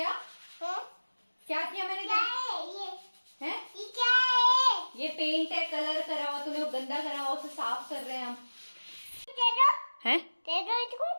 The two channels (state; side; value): inverted; both; correlation -1.00